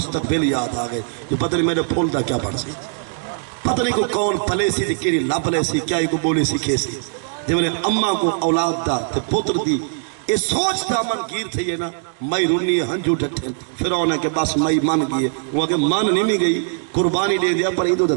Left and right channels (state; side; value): silent; left; digital silence